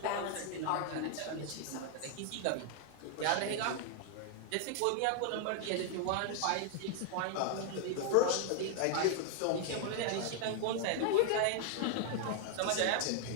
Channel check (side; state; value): both; different; correlation 0.00